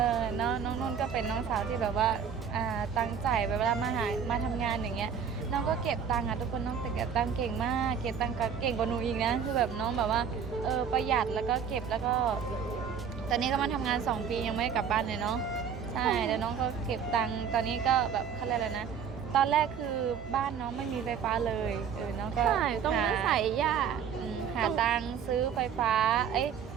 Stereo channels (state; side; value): quieter; left; 7.3 dB